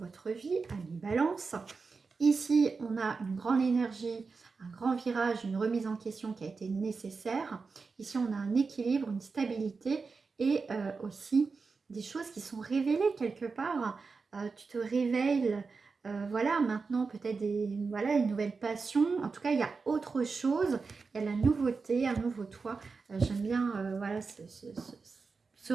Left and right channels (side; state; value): left; quieter; 4.6 dB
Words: vie, à mi-balance. Ici, on a une grande énergie, un grand virage, une remise en question qui a été nécessaire. Ici, on a un équilibre, une stabilité et aussi des choses qui sont révélées quelque part. Tu te réveilles, voilà, maintenant peut-être une nouvelle passion. En tout cas, il y a autre chose. Il y a la nouveauté, un nouveau toi. J'aime bien, voilà, ce